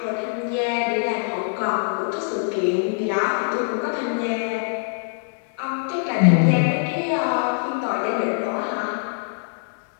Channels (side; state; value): right; silent; 63 dB below the other